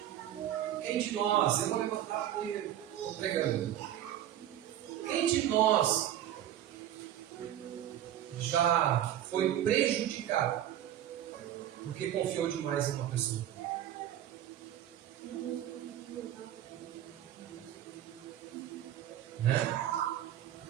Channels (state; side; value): quieter; left; 11.6 dB